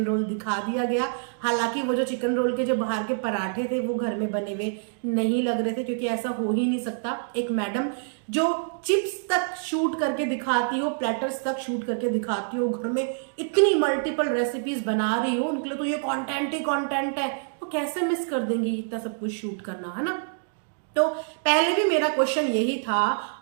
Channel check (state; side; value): silent; left; digital silence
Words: रोल दिखा दिया गया। हालांकि वो जो चिकन रोल के जो बाहर के पराठे थे वो घर में बने हुए नहीं लग रहे थे, क्योंकि ऐसा हो ही नहीं सकता। एक मैडम जो चिप्स तक शूट करके दिखाती हो, प्लेटर्स तक शूट करके दिखाती हो, घर में इतनी मल्टीपल रेसिपीज बना रही हो, उनके लिए तो ये कंटेंट ही कंटेंट है। वो कैसे मिस कर देंगी इतना सब कुछ शूट करना, है ना। तो पहले भी मेरा क्वेश्चन यही था,